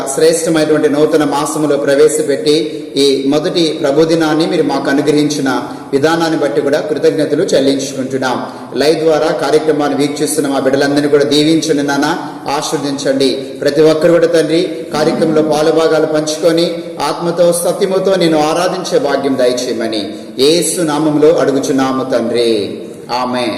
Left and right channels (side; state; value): both; identical; correlation 1.00